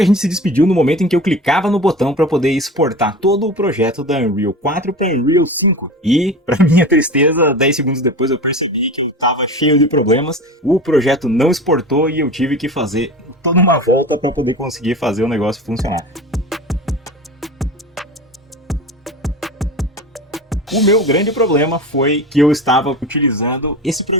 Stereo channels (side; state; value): both; normal; correlation 0.32